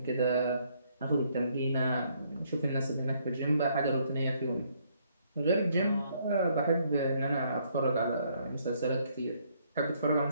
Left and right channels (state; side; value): inverted; both; correlation -0.69